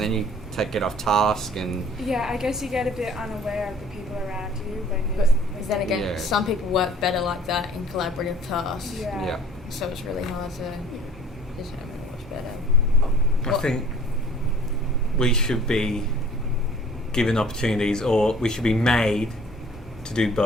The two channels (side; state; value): both; normal; correlation 0.51